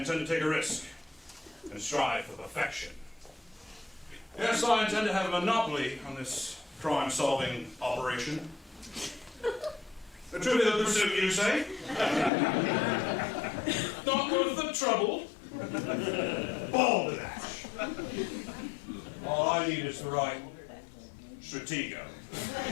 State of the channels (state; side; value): drops out; right; at 12.3 s